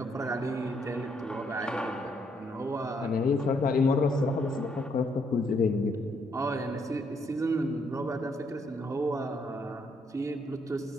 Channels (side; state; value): both; normal; correlation 0.72